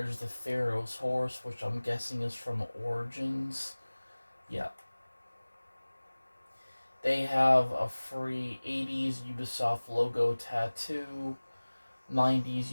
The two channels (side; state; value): both; inverted; correlation -1.00